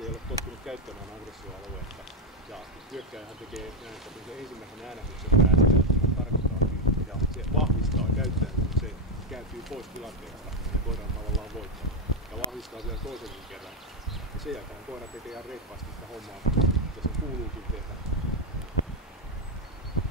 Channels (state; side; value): normal; both; correlation 0.05